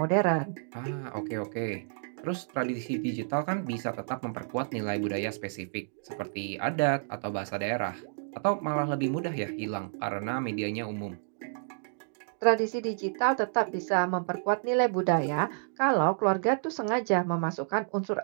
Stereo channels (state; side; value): silent; left; digital silence